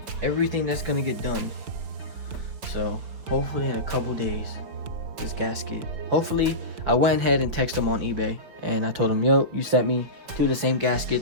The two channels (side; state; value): left; late; 5.6 ms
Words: everything that's gonna get done. So hopefully in a couple days, this gasket, hopefully, I went ahead and texted them on eBay and I told them, yo, you sent me 2 of the same